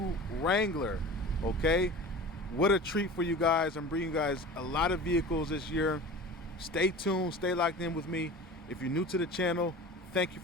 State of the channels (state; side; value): normal; both; correlation 0.37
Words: Wrangler. Okay, what a treat for you guys. I'm bringing you guys a lot of vehicles this year. Stay tuned, stay locked in with me. If you're new to the channel, thank you